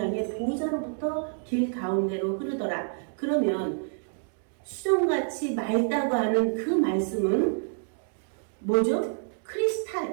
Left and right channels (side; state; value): left; silent; digital silence